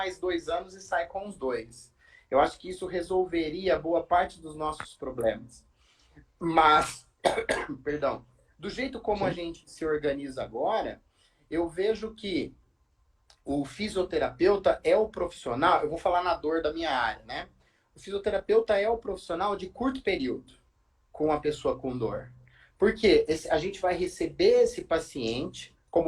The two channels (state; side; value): identical; both; correlation 1.00